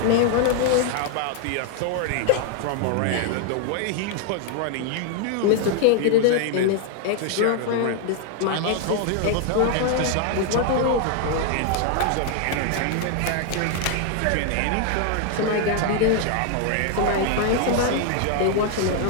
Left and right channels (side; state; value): both; different; correlation 0.00